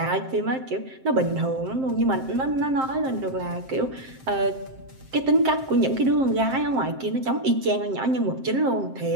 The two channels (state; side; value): late; left; 7.6 ms